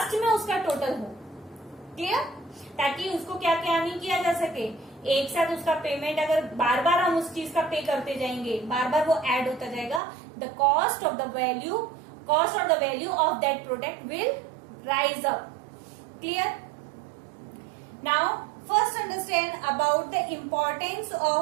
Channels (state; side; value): drops out; left; at 10.0 s